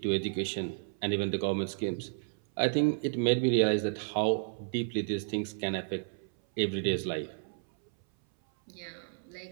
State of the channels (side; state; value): left; silent; 56 dB below the other